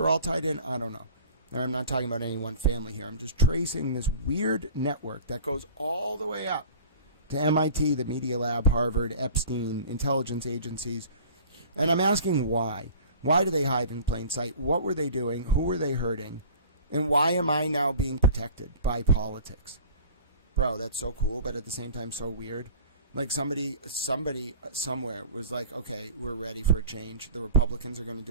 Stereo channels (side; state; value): both; inverted; correlation -0.42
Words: all tied in, I don't know. I'm not talking about any one family here. I'm just tracing this weird network that goes all the way up to MIT, the Media Lab, Harvard, Epstein, intelligence agencies. And I'm asking why. Why do they hide in plain sight? What were they doing? Who were they hurting? And why am I now being protected by politics? Bro, that's so cool, but at the same time so weird. Like somebody somewhere was like, okay, we're ready for a change. The Republicans are going to